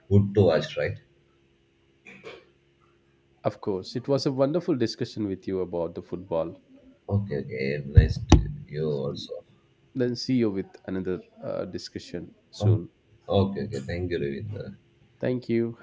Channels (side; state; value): both; identical; correlation 1.00